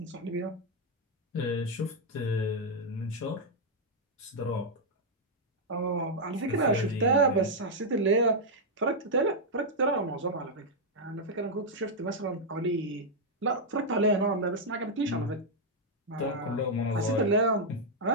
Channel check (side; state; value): both; normal; correlation -0.02